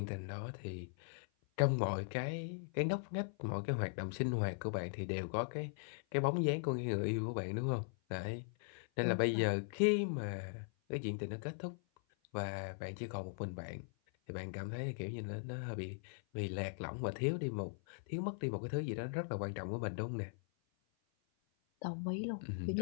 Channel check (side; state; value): right; silent; 51 dB below the other